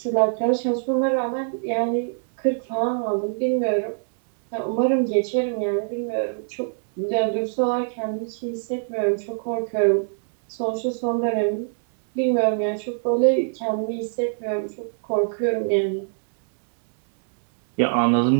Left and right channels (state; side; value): silent; left; digital silence